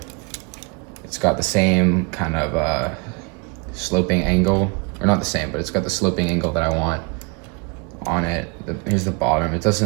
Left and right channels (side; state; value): left; quieter; 31.6 dB